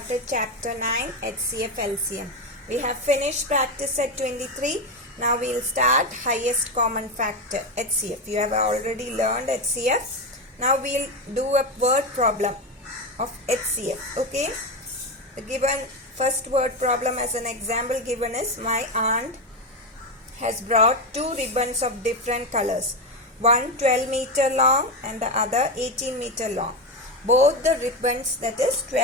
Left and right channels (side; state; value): both; normal; correlation 0.13